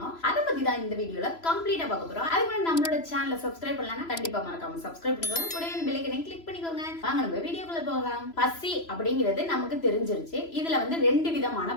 அதை பத்தி தான் இந்த வீடியோல கம்ப்ளீட்டா பார்க்க போறோம். அதுக்கு முன்னாடி நம்மளோட சேனலை சப்ஸ்கிரைப் பண்ணலன்னா கண்டிப்பா மறக்காம சப்ஸ்கிரைப் பண்ணிக்கோங்க. கூடவே பெல் ஐகானை கிளிக் பண்ணிக்கோங்க. வாங்க நம்ம வீடியோக்குள்ள போகலாம். பசி அப்படிங்கிறது நமக்கு தெரிஞ்சிருச்சு. இதுல வந்து 2 விதமான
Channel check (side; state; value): right; late; 3.0 ms